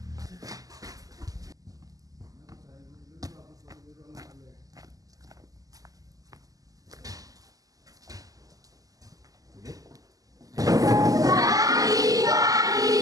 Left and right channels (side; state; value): left; late; 0.17 ms